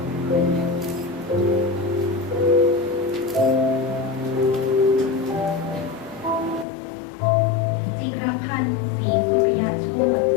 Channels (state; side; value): drops out; right; at 6.7 s